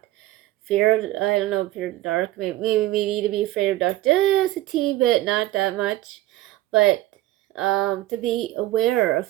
fear of, I don't know, fear of the dark. Maybe we need to be afraid of dark just a teeny bit, not that much, but to be aware of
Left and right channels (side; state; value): left; quieter; 16.1 dB